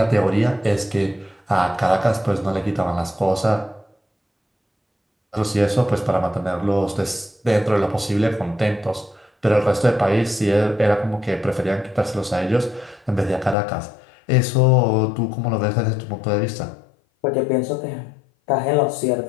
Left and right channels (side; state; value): right; drops out; at 13.6 s